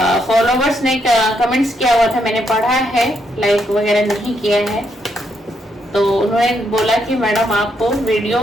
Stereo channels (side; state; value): both; normal; correlation 0.77